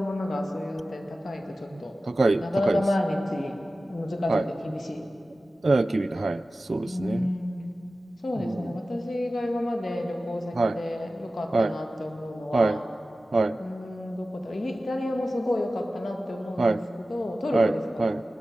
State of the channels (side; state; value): both; normal; correlation 0.95